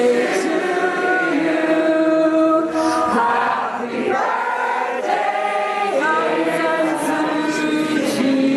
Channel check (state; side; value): identical; both; correlation 1.00